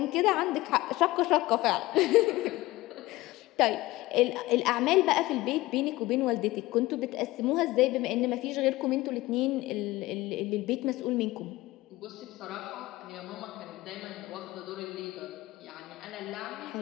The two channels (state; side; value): quieter; right; 18.8 dB